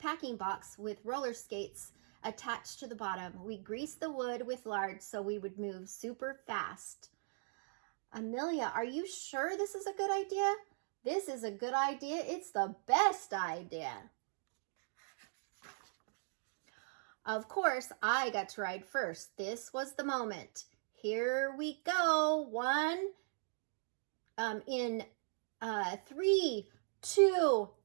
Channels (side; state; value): left; silent; digital silence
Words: box with roller skates attached to the bottom. We greased the wood with lard so we would move super fast. Amelia, are you sure this is a good idea? This is a good idea. It's the best idea. Of course, I got to ride first. This was the moment. Here we go. In 3, 2.